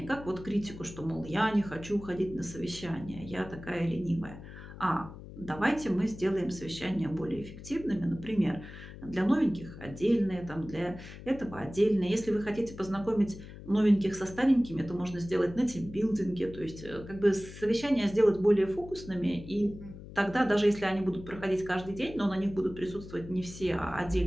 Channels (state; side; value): noise; left; hum, 14 dB below the sound